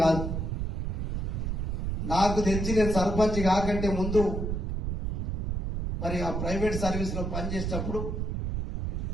కాదు, నాకు తెలిసి నేను సర్పంచ్ కాకంటే ముందు మరి ఆ ప్రైవేట్ సర్వీస్ లో పనిచేసేటప్పుడు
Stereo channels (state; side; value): noise; right; rumble, 1 dB below the sound